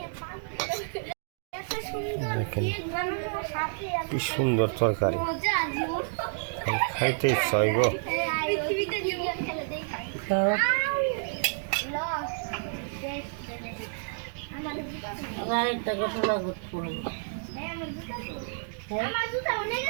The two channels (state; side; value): silent; left; digital silence